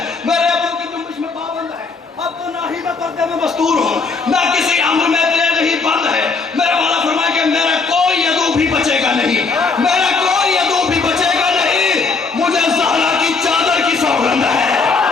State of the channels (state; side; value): quieter; right; 4.5 dB